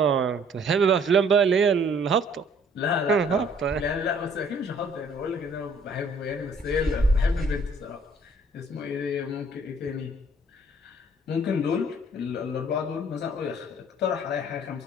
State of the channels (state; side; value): normal; both; correlation 0.59